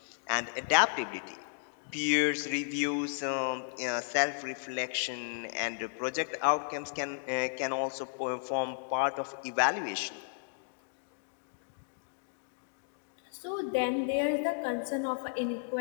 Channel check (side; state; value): right; silent; digital silence